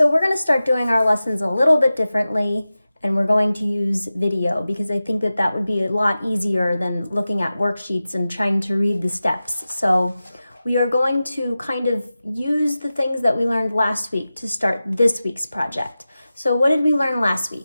we're going to start doing our lessons a little bit differently, and we're going to use video because I think that would be a lot easier than looking at worksheets and trying to read the steps. So we are going to kind of use the things that we learned last week to start this week's project. So what did we learn last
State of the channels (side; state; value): both; inverted; correlation -0.94